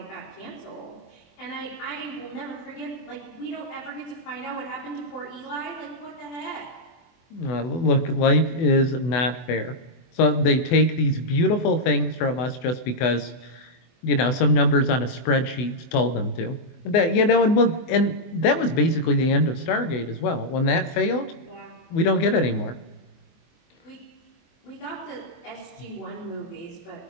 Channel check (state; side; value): late; right; 24 ms